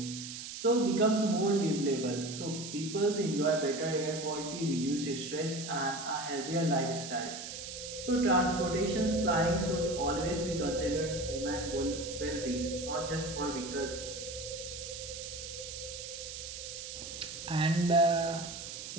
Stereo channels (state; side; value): noise; right; hiss, 9 dB below the sound